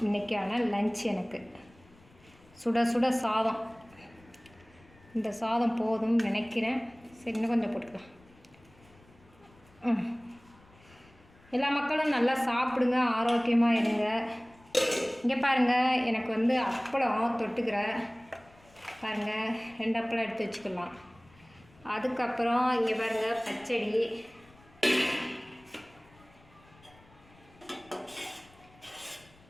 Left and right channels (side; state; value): left; noise; rumble, 27 dB below the sound